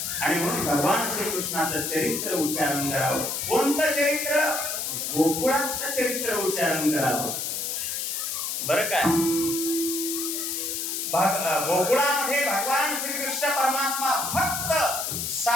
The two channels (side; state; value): left; noise; hiss, 2 dB below the sound